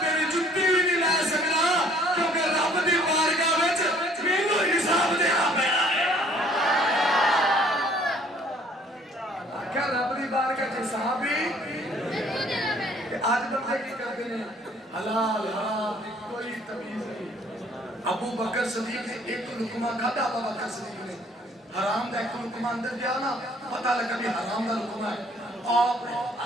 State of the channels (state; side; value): normal; both; correlation 0.59